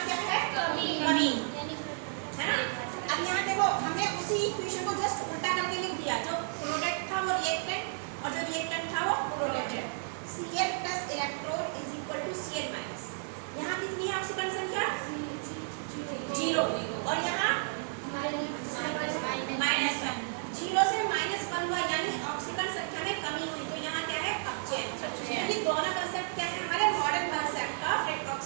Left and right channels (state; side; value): silent; left; 56 dB below the other